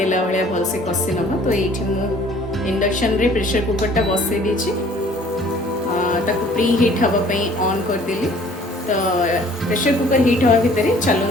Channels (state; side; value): normal; both; correlation 0.54